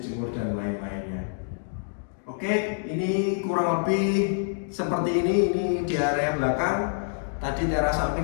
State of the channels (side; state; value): right; silent; digital silence